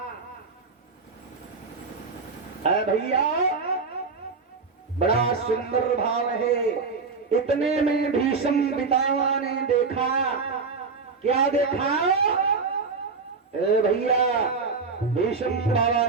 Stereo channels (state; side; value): quieter; left; 4.6 dB